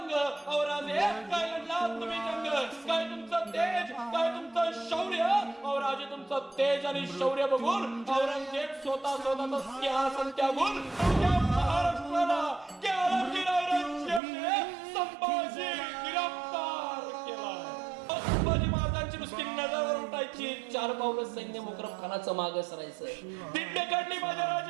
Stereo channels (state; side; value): drops out; left; at 14.2 s